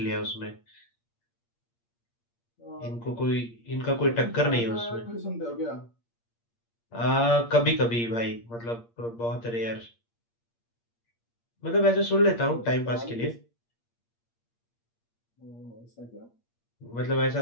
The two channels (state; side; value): late; right; 8.6 ms